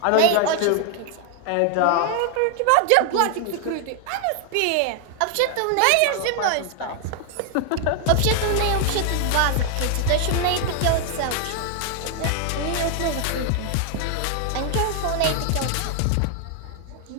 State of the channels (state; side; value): different; both; correlation 0.00